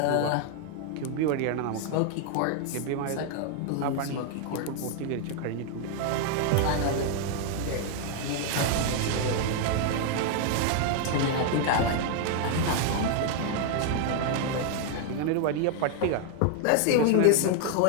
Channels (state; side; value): different; both; correlation 0.00